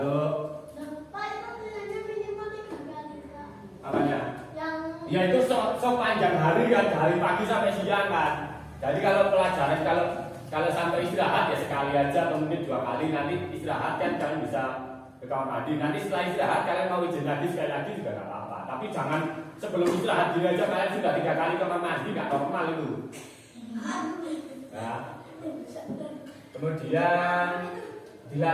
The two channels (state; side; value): identical; both; correlation 1.00